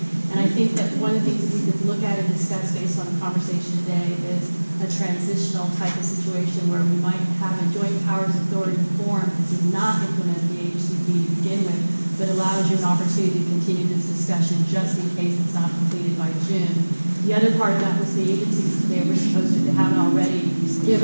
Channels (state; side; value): inverted; both; correlation -1.00